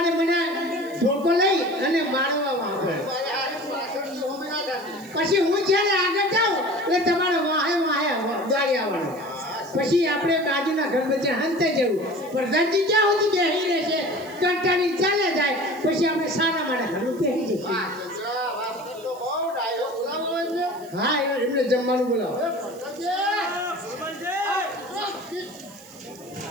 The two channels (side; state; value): right; noise; hiss, 23 dB below the sound